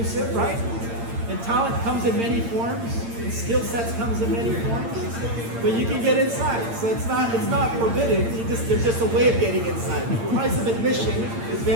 right? And talent comes in many forms, and skill sets comes in many forms. But you can get inside, so it's not forbidden. There's just a way of getting inside. The price of admission is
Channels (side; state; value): left; late; 8.6 ms